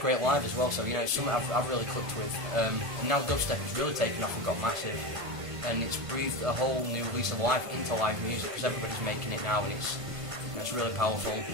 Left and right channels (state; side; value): late; left; 1.5 ms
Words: live as well, so you know, it's something I've really clicked with. And now dubstep has really taken off and got massive, and it's breathed a whole new lease of life into live music, because everybody's making it now, and it's really powerful.